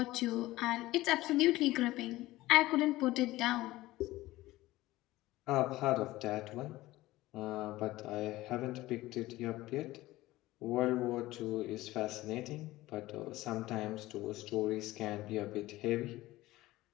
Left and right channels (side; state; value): right; quieter; 17.6 dB